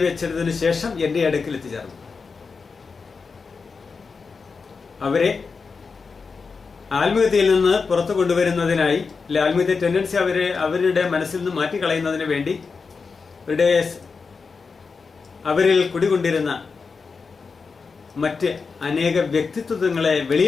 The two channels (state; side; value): quieter; right; 4.9 dB